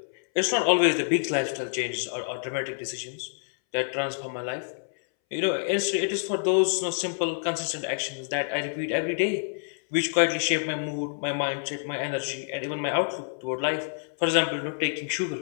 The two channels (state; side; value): silent; right; 60 dB below the other